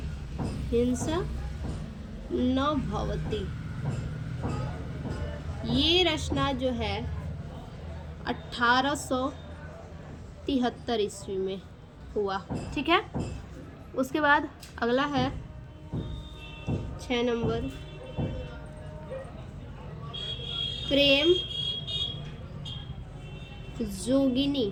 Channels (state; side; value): identical; both; correlation 1.00